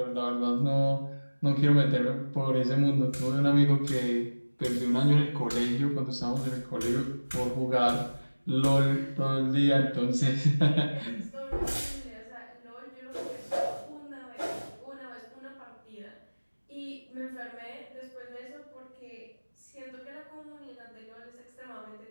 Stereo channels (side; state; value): both; inverted; correlation -1.00